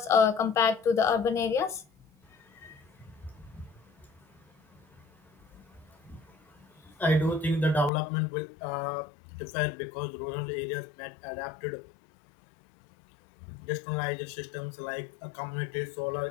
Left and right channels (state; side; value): drops out; right; at 7.9 s